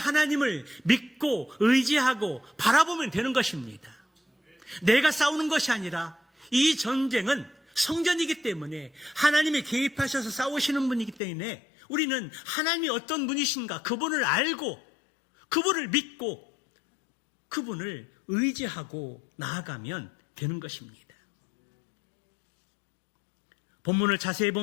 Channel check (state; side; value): drops out; right; at 11.2 s